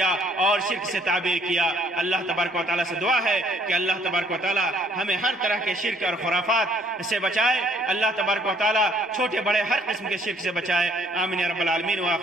اور شرک سے تعبیر کیا۔ اللہ تبارک و تعالیٰ سے دعا ہے کہ اللہ تبارک و تعالیٰ ہمیں ہر طرح کے شرک اور خرافات سے بچائے، اللہ تبارک و تعالیٰ چھوٹے بڑے ہر قسم کے شرک سے بچائے۔ آمین یا رب العالمین،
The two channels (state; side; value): normal; both; correlation 0.63